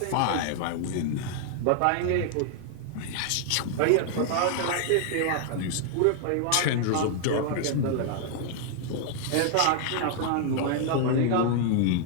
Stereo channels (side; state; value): both; different; correlation 0.00